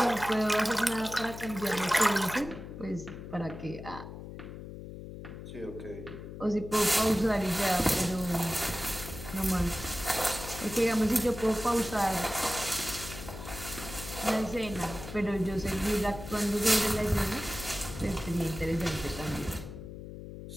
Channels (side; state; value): left; noise; hum, 11 dB below the sound